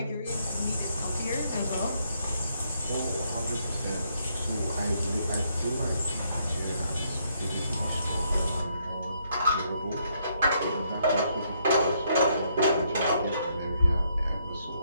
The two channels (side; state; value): both; inverted; correlation -0.73